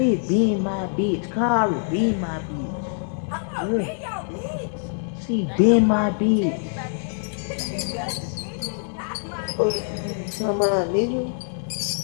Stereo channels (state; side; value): silent; right; 62 dB below the other